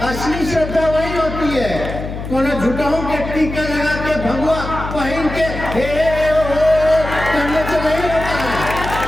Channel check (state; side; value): noise; left; hum, 7 dB below the sound